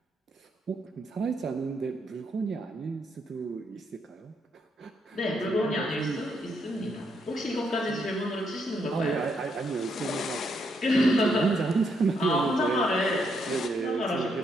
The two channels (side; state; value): both; normal; correlation 0.76